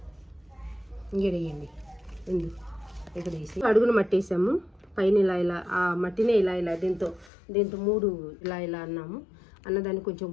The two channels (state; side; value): drops out; right; at 7.3 s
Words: ఇంకేయండి ఎందుకు ఇక్కడ వేసి అడుగున మట్టి వేసాము. పైన ఇలా ఆ మట్టినే ఇలా దీంతో 3 ఇలా అన్నాము. అన్నదాన్ని కొంచెం